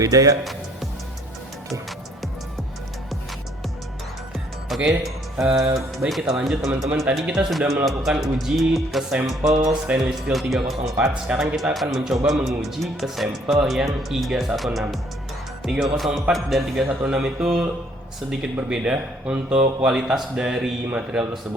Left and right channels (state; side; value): normal; both; correlation 0.62